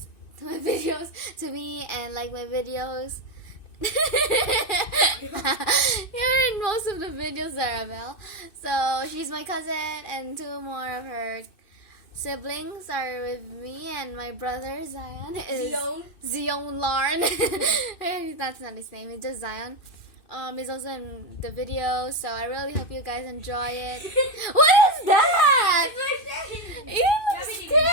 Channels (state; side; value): late; right; 2.6 ms